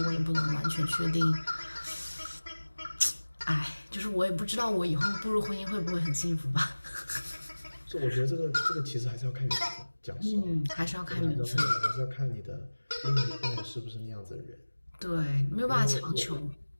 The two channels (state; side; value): inverted; both; correlation -1.00